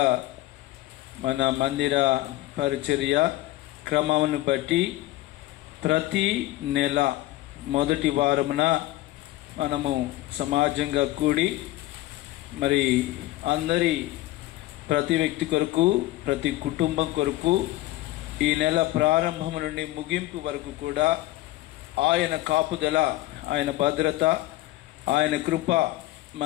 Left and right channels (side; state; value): right; quieter; 17.1 dB